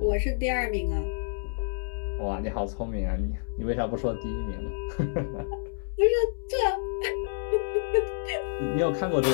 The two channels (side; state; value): right; silent; 59 dB below the other